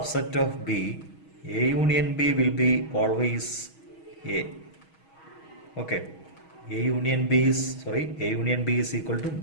of B, A union B will be always A. Okay. A union B is equal to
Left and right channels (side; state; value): right; late; 6.3 ms